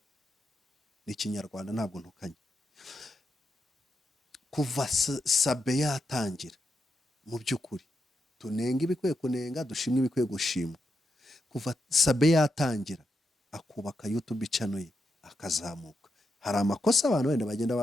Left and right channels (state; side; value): normal; both; correlation 0.85